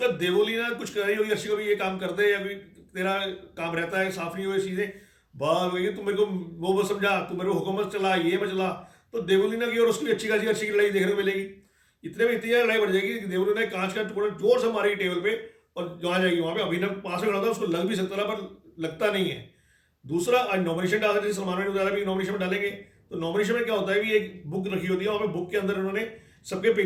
देवोली ना कुछ कर रही होगी अर्शी को भी, ये काम कर दे, या फिर तेरा काम रहता है साफ नहीं हुए चीज़ें, बात वही तू मेरे को वो समझा, तू मेरे को हुकूमत चला, ये मैं चला। तो देवोलीना की और उसकी अच्छी खासी अर्शी की लड़ाई देखने को मिलेगी। इतने में इतनी लड़ाई बढ़ जाएगी कि देवोलीना कांच का टुकड़ा जोर से मारेगी टेबल पे, और जहाँ जाएगी वहाँ पे अभिनव पास में खड़ा था, उसको लग भी सकता था पर लगता नहीं है। दूसरा, आज नॉमिनेशन डाल रहे थे, सलमान ने बताया भी नॉमिनेशन में डालेंगे। तो नॉमिनेशन में क्या होता है भी एक बुक रखी होती है, वहाँ पे बुक के अंदर उन्होंने सबके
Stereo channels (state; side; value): identical; both; correlation 1.00